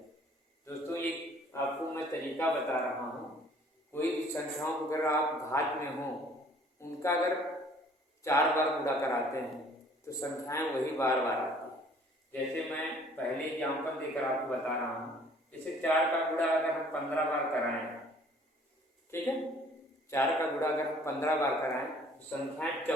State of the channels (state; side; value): normal; both; correlation 0.55